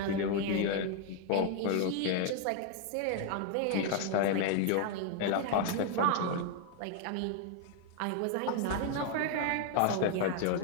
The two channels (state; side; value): different; both; correlation 0.00